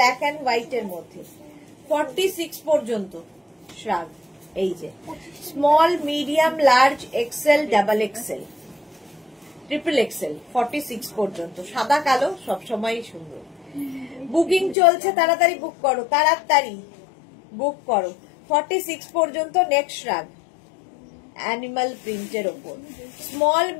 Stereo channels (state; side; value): drops out; right; at 14.8 s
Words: অ্যান্ড হোয়াইট এর মধ্যে। 46 পর্যন্ত শ্রাগ, এই যে small, medium, large, XL, double XL, triple XL. 46 পর্যন্ত সাদা কালো সবসময় সুন্দর। বুকিং চলছে, তাড়াতাড়ি বুক করো, তাড়াতাড়ি বুক করো। 46 পর্যন্ত নেক্সট শ্রাগ, অ্যানিমাল প্রিন্টের ওপর, small,